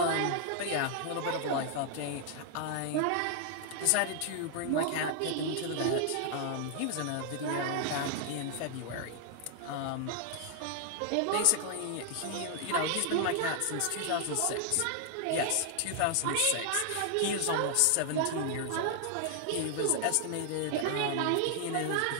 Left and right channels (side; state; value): both; different; correlation 0.00